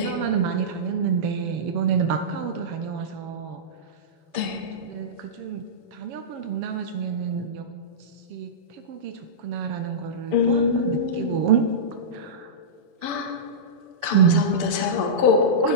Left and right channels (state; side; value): late; left; 6.9 ms